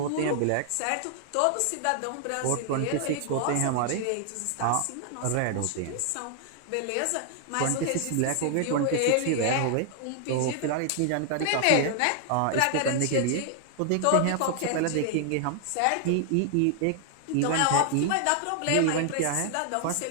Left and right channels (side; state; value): both; different; correlation 0.00